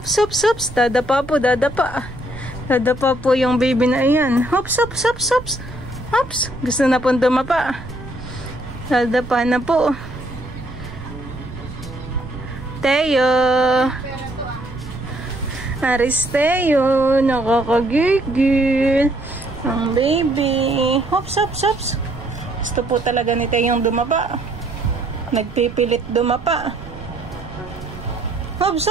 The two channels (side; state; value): right; noise; rumble, 14 dB below the sound